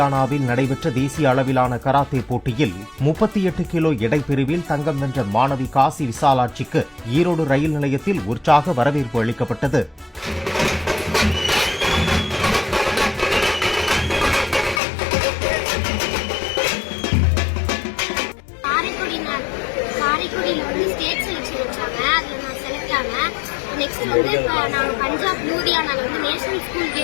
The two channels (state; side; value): drops out; right; at 14.8 s